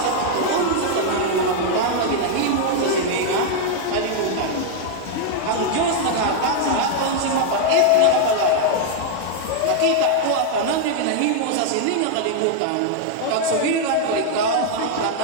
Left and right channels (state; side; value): different; both; correlation 0.00